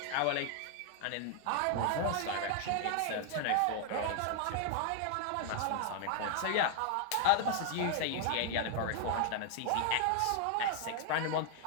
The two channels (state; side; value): different; both; correlation 0.00